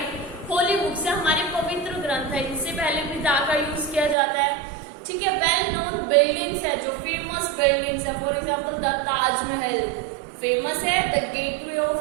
Holy books है हमारे पवित्र ग्रंथ है, इनसे पहले भी दा का यूज किया जाता है, ठीक है। वेल नोन बिल्डिंग्स है, जो फेमस बिल्डिंग्स है, for example the Taj Mahal famous है, द गेटवे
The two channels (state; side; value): drops out; left; at 4.2 s